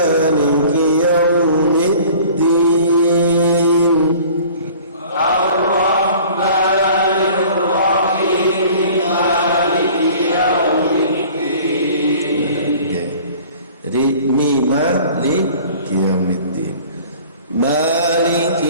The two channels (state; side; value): inverted; both; correlation -0.48